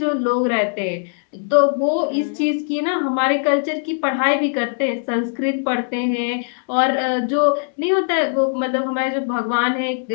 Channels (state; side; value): silent; right; 66 dB below the other